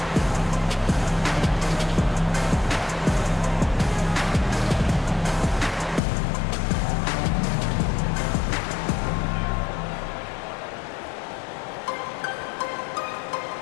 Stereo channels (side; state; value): right; drops out; at 6.0 s